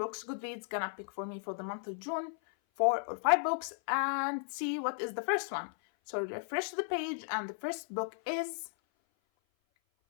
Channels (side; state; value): right; silent; 54 dB below the other